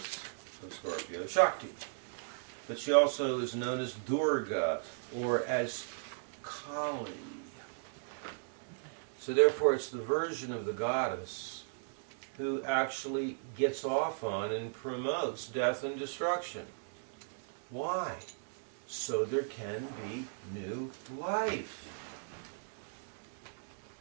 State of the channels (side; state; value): left; silent; digital silence